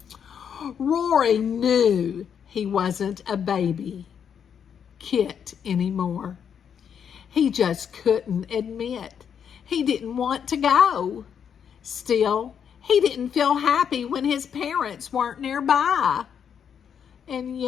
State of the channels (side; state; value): right; quieter; 7.8 dB